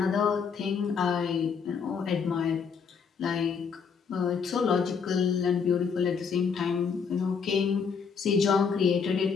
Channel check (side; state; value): right; quieter; 6.1 dB